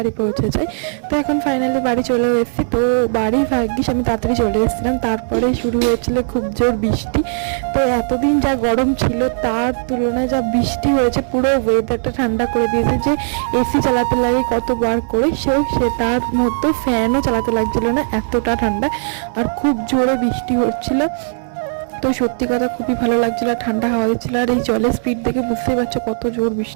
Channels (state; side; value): silent; left; 64 dB below the other